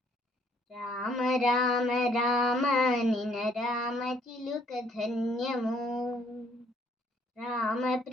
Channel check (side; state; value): both; normal; correlation 0.65